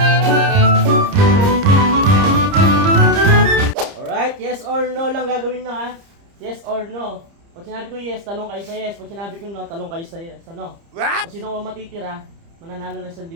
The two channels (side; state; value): left; late; 30 ms